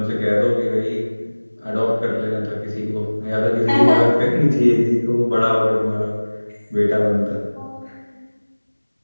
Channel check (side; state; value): both; inverted; correlation -1.00